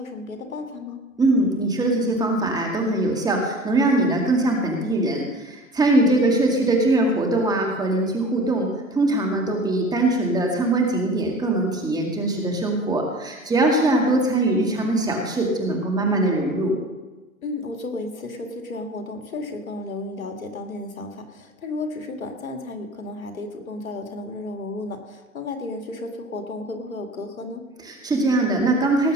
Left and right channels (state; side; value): normal; both; correlation 0.40